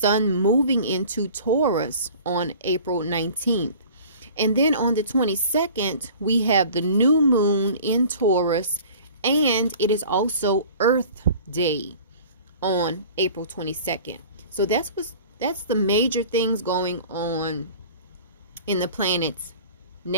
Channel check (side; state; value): both; inverted; correlation -0.45